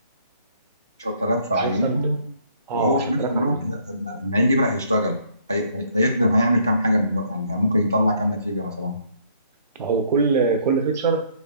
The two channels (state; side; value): inverted; both; correlation -0.64